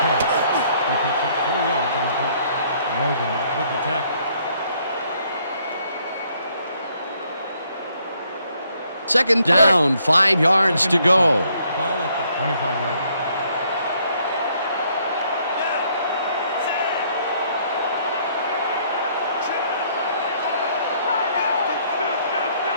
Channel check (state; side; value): inverted; both; correlation -0.67